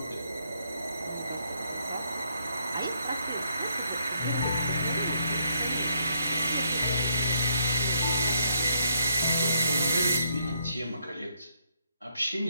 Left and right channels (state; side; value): inverted; both; correlation -0.74